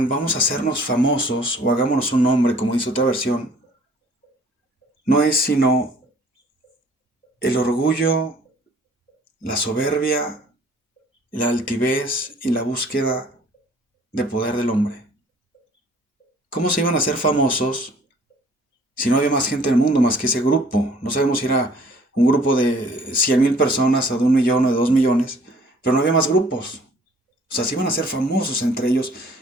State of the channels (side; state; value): both; normal; correlation 0.55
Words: vamos a hacernos famosos o hagámonos un nombre, como dice otra versión, no es sino el orgullo, la soberbia, la altivez y la búsqueda de poder del hombre. ¿Cómo se iban a hacer famosos si no había más gente en el mundo más que ese grupo? No sabemos si era un grupo de 100,000 personas o de 1,000,000 o de 2,000,000, pero no había más grupos. O sea, se iban a hacer famosos entre ellos.